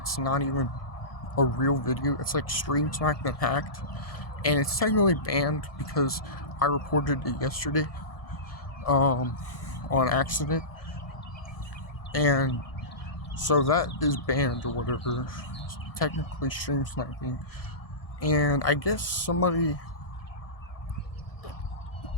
not even a real video. It's like stream sniped and hacked, and it's technically banned because I reported it yesterday on accident, and so that is banned or whatever. It's technically stream sniping, and I guess somebody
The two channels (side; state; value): right; late; 1.7 ms